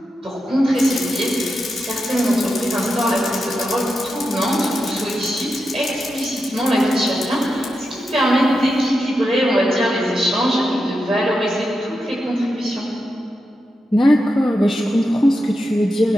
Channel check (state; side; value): normal; both; correlation 0.88